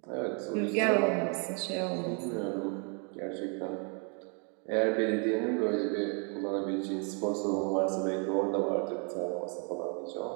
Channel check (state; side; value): quieter; left; 37.6 dB